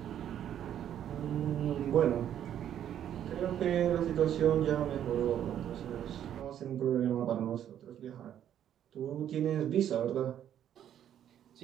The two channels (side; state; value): left; quieter; 10.3 dB